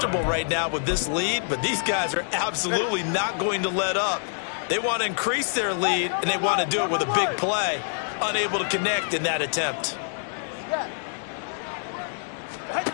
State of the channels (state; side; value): silent; right; digital silence